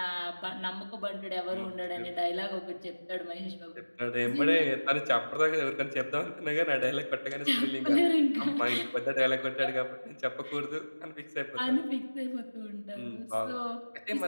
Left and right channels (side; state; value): both; inverted; correlation -1.00